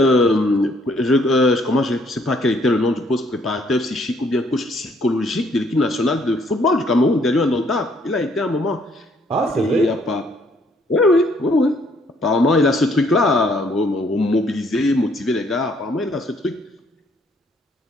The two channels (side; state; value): both; normal; correlation 0.66